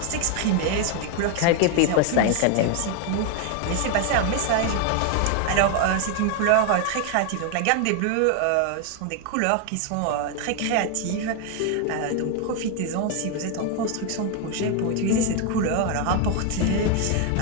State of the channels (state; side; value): different; both; correlation 0.01